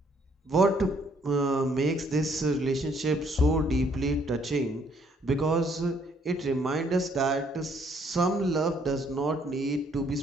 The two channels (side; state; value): both; normal; correlation 0.66